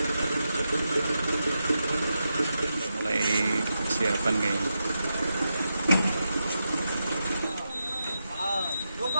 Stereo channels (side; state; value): both; inverted; correlation -0.87